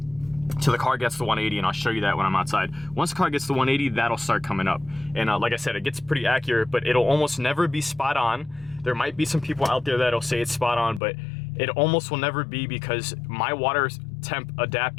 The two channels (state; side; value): drops out; right; at 11.0 s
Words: till the car gets to 180, and I'll show you that when I'm outside. Once the car gets to 180, that'll start coming up. And like I said, it gets pretty accurate, but it'll almost never be spot on. There might be some people out there that'll say it's spot on, but it almost will never be, because my water temp